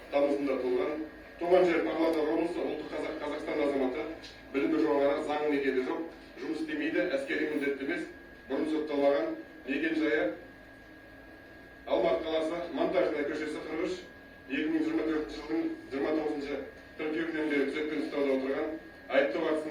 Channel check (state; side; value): identical; both; correlation 1.00